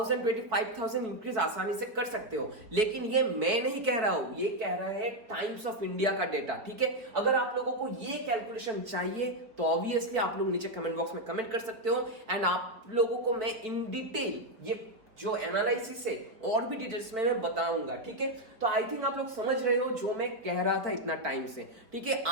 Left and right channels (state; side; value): late; left; 4.3 ms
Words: 25,000 इंक्रीज आसानी से कर सकते हो। लेकिन ये मैं नहीं कह रहा हूं, ये कह रहा है टाइम्स ऑफ इंडिया का डेटा, ठीक है। अगर आप लोगों को ये कैलकुलेशन चाहिए तो ऑब्वियसली आप लोग नीचे कमेंट बॉक्स में कमेंट कर सकते हो एंड आप लोगों को मैं इन डिटेल ये जो एनालिसिस है और भी डिटेल्स में मैं बताऊंगा, ठीक है। तो आई थिंक आप लोग समझ रहे हो जो मैं कह रहा था इतना टाइम से, ठीक है।